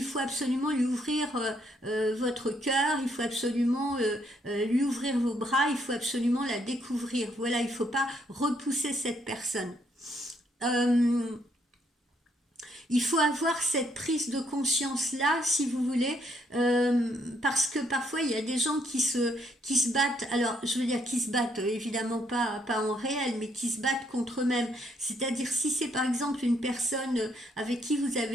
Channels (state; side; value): normal; both; correlation 0.71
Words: faut absolument lui ouvrir votre cœur, il faut absolument lui ouvrir vos bras, il faut absolument la découvrir. Voilà, il ne faut pas repousser cette personne. Euh, il faut avoir cette prise de conscience là, si vous voulez, parce que parfois il y a des gens qui se battent, alors je veux dire qui se battent, évidemment pas en réel, mais qui se battent contre eux-mêmes. C'est-à-dire si c'est par exemple une personne avec qui vous